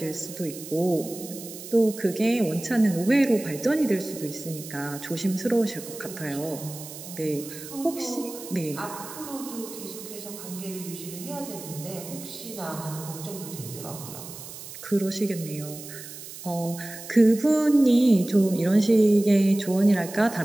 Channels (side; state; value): right; noise; hiss, 13 dB below the sound